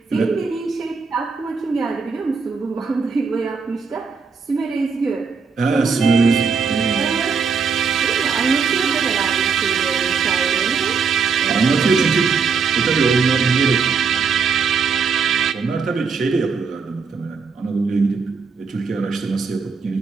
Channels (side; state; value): left; quieter; 5.4 dB